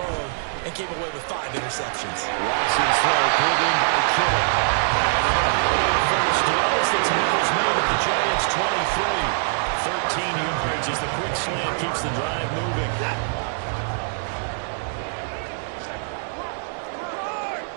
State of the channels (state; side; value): silent; left; 63 dB below the other